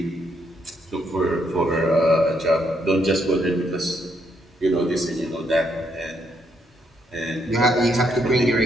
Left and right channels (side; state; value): both; normal; correlation 0.75